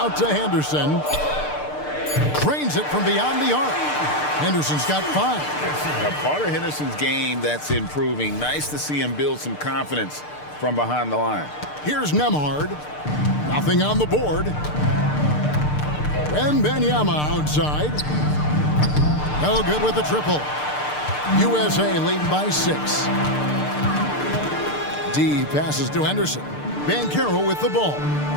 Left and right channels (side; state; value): right; late; 6.7 ms